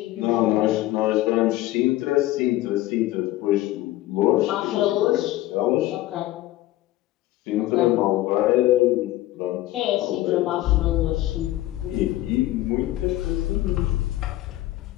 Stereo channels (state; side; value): quieter; right; 16.1 dB